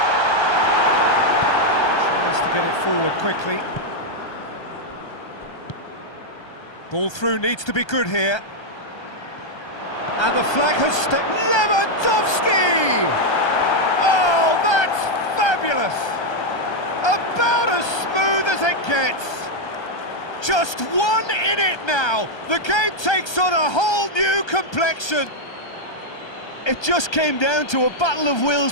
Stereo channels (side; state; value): right; late; 1.3 ms